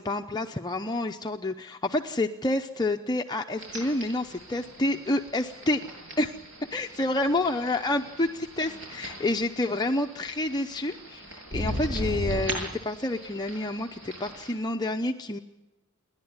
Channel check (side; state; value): both; normal; correlation 0.55